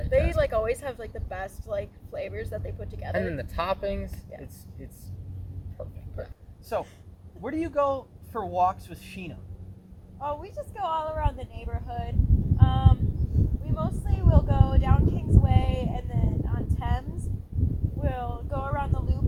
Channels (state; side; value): identical; both; correlation 1.00